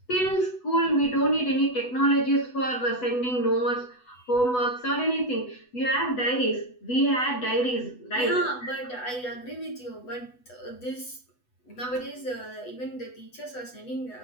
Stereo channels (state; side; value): late; right; 8.1 ms